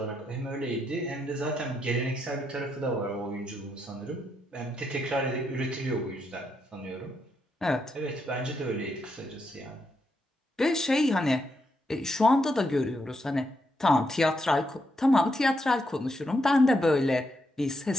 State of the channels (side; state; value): both; normal; correlation 0.80